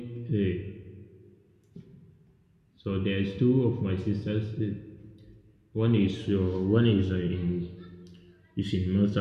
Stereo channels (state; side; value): identical; both; correlation 1.00